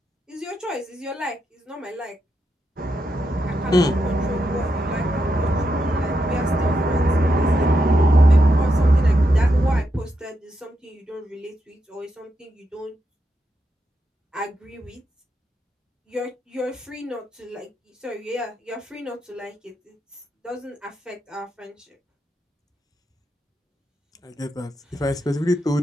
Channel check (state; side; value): normal; both; correlation 0.84